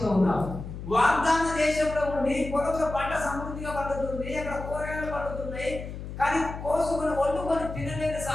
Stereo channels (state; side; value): noise; left; hum, 9 dB below the sound